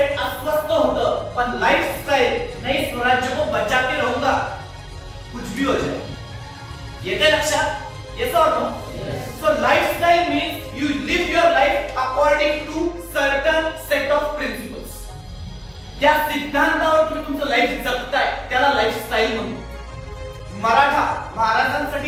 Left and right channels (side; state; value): both; identical; correlation 1.00